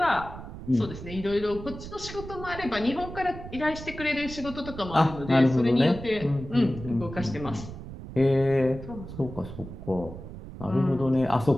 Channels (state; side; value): noise; right; rumble, 12 dB below the sound